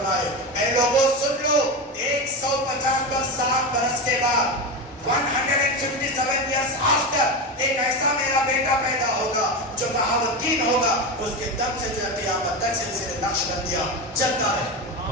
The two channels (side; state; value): both; normal; correlation 0.19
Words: اے لوگوں سن لو 150 پر 7 برس کے بعد 157 years after ایک ایسا میرا بیٹا پیدا ہوگا جو بہاؤالدین ہوگا اس کے دم سے جو ہے قیامت تک سلسلے نقشبندیہ چلتا رہے.